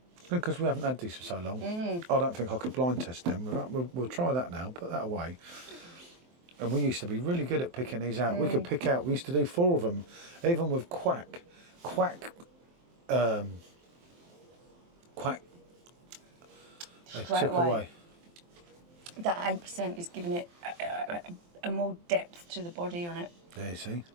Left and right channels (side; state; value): left; late; 23 ms